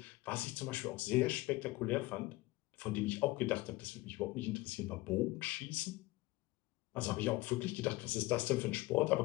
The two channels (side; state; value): right; quieter; 20.1 dB